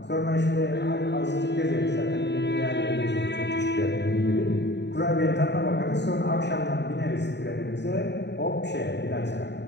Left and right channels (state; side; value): late; right; 0.50 ms